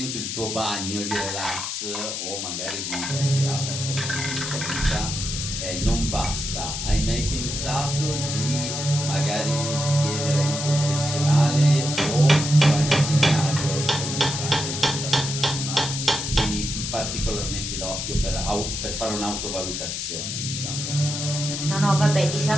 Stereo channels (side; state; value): left; noise; hiss, 4 dB below the sound